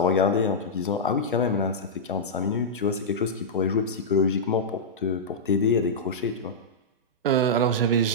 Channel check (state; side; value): normal; both; correlation -0.10